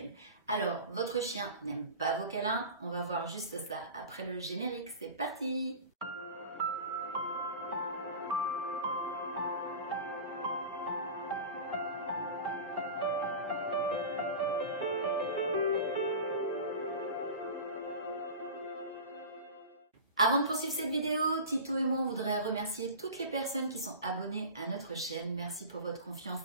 Alors, votre chien n'aime pas vos câlins? On va voir juste ça après le générique. C'est parti! Avant de poursuivre cette vidéo, Tito et moi on voudrait remercier toutes les personnes qui sont abonnées à notre chaîne. Merci pour votre confiance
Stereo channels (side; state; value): both; inverted; correlation -0.33